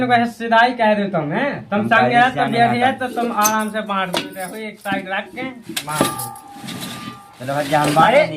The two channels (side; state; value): both; identical; correlation 1.00